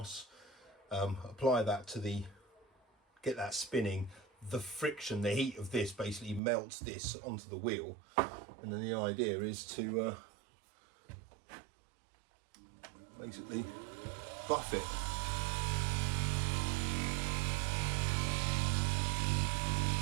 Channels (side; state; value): left; drops out; at 6.4 s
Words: Apply that to get that spinning. The friction, the heat of this basically melts this onto the wheel, and then the idea is to basically buff it.